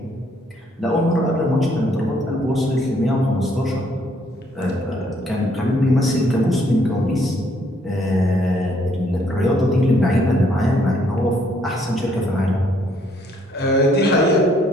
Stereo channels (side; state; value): both; normal; correlation 0.67